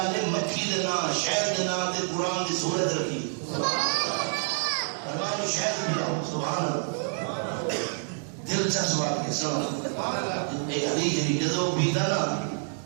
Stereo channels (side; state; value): left; silent; 60 dB below the other